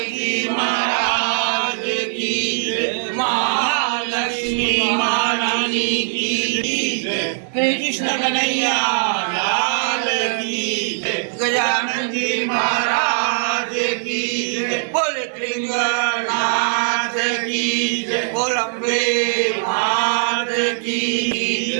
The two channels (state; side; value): silent; left; digital silence